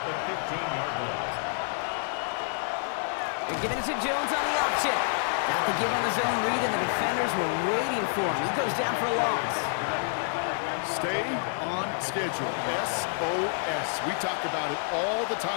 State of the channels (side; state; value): right; silent; digital silence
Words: the 15-yard line. They're giving it to Jones on the option. Got the give on the zone read, and the defenders were waiting for him. He goes down for a loss. Stay on schedule. SOS. We talk about it all the